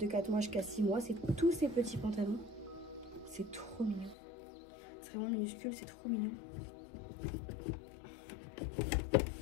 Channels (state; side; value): drops out; right; at 4.2 s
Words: 4 mois jusqu'à 6 mois. C'est tous ces petits pantalons. C'est trop mignon. C'est vraiment minuscule, c'est trop mignon.